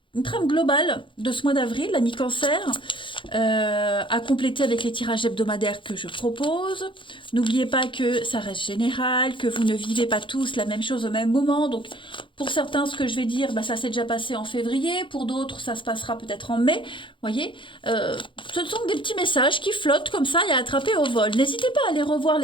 globale de ce mois d'avril, l'ami Cancer, à compléter avec les tirages hebdomadaires que je propose. N'oubliez pas que ça reste général, que vous ne vivez pas tous la même chose au même moment. Donc, pour certains, ce que je vais dire, bah, ça s'est déjà passé en février. Pour d'autres, ça se passera peut-être en mai. Voyez, ce sont des petits messages qui flottent comme ça et à attraper au vol. N'hésitez pas à aller revoir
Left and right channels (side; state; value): right; late; 0.24 ms